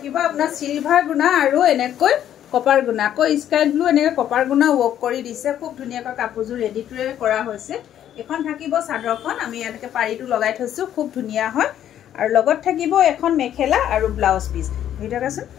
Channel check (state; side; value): quieter; right; 10.8 dB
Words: আপোনাৰ সিলভাৰ গুণা আৰু এনেকৈ কপাৰ গুণা কো স্কাই ব্লু এনেকৈ কপাৰ গুণা ওয়াৰ্ক কৰি দিছে খুব ধুনিয়াকৈ কাপোৰজোৰ ৰেডি টু কৰা হৈছে এখন থাকিব চাদৰখন আমি এনেকৈ পাৰিটো লগাই থৈছো খুব ধুনিয়া হয় আৰু লগত থাকিব এখন মেখেলা আৰু ব্লাউজ পিস ভিডিওটা আছে